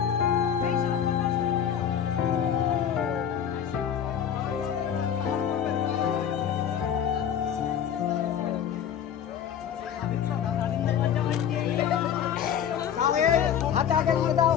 হাতে আগে করে দাও।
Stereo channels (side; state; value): right; quieter; 8.8 dB